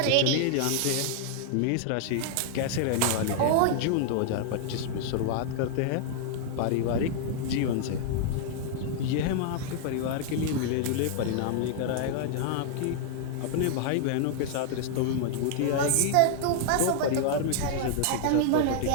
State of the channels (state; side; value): different; both; correlation -0.01